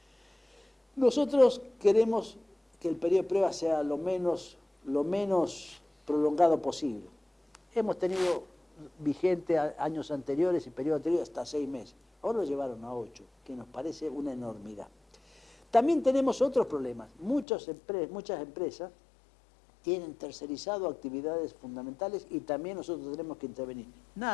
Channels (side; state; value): right; drops out; at 17.4 s